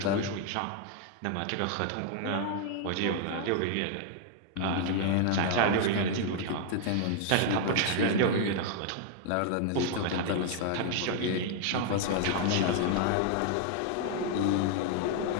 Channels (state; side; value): different; both; correlation 0.00